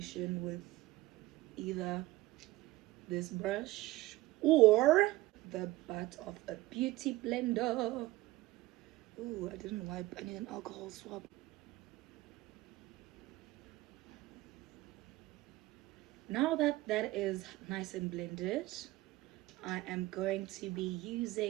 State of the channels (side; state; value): left; quieter; 18.4 dB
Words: with either this brush or the butt of a beauty blender. Ooh, I didn't wipe. I need an alcohol swab. Now that that is nice and blended, I am going to be